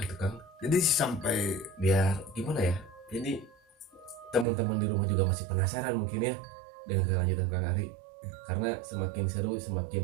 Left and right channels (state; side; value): drops out; left; at 4.5 s